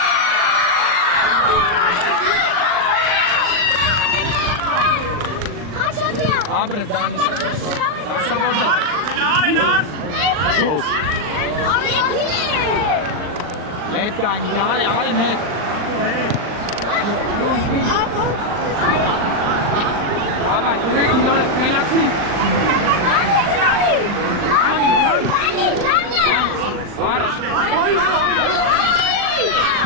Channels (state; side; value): late; left; 39 ms